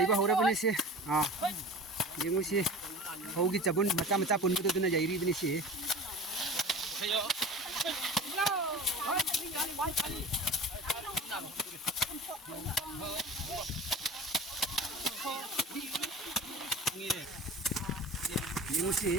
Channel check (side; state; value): both; normal; correlation 0.37